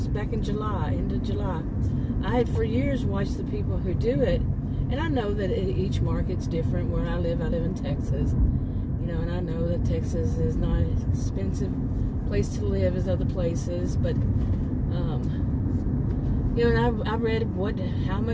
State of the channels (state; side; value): identical; both; correlation 1.00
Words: back in July, end of July. I had for years watched the people who do it, and I know that each market's different. Where I live in Texas, and I know that Texas is not an expensive place to live as other places, but, and I read how